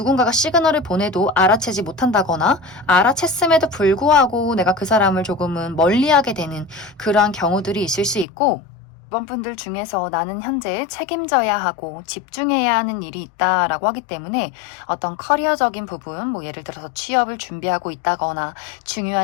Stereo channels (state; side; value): drops out; right; at 8.2 s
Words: 시그널을 보내도 알아채지 못한다거나 알아챘음에도 불구하고 내가 그 사람을 조금은 멀리하게 되는 그러한 경우들이 있을 수 있고 이번 분들 중에서 나는 현재 책임져야 하고 집중해야 하는 일이 있다라고 하기 때문에 어떤 커리어적인 부분, 뭐 예를 들어서 취업을 준비하고 있다거나